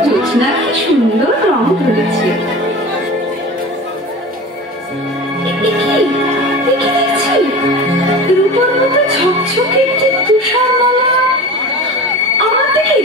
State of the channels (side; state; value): both; normal; correlation 0.34